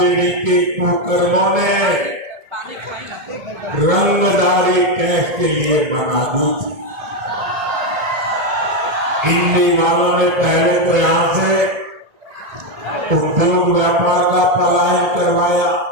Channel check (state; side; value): late; left; 2.2 ms